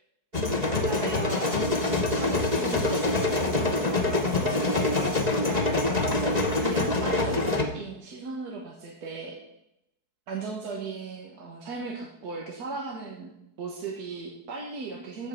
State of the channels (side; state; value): left; late; 4.6 ms